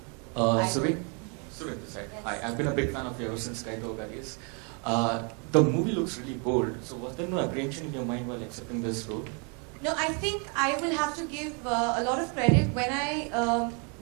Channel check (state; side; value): quieter; left; 36.2 dB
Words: Suvin this side. Yes. Hi, I've been a big fan of yours since Kaito Garis. The movie looks really bold. So was there no apprehension in your mind while accepting this role? No, I think I will have to give a lot of credit